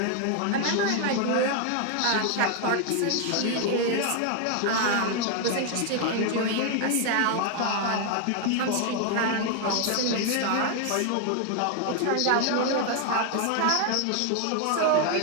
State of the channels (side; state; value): both; different; correlation 0.01